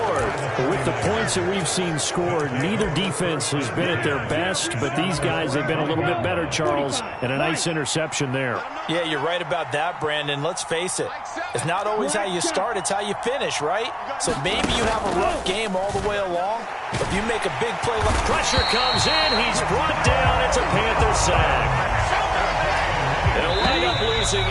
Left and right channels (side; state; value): both; identical; correlation 1.00